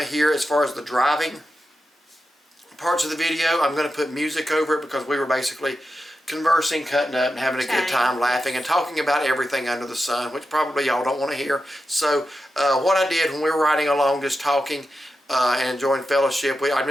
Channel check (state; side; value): normal; both; correlation 0.90